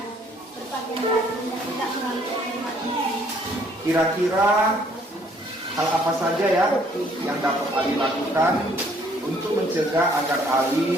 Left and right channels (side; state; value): both; normal; correlation 0.63